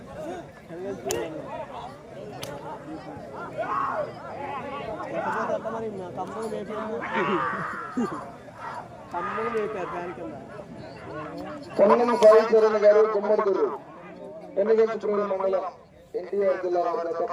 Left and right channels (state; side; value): identical; both; correlation 1.00